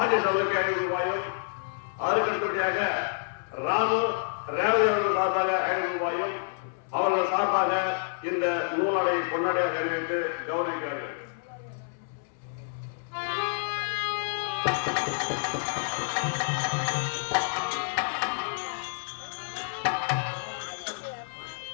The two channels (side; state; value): right; silent; 59 dB below the other